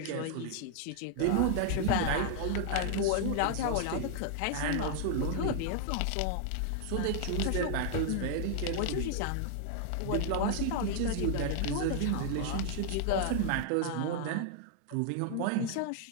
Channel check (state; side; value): different; both; correlation 0.00